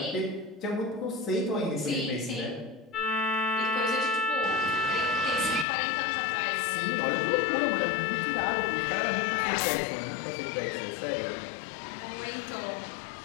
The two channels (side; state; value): right; drops out; at 5.7 s